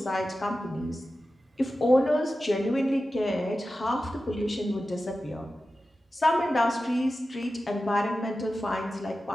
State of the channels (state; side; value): normal; both; correlation 0.93